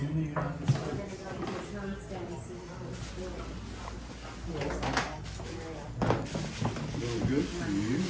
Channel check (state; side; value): identical; both; correlation 1.00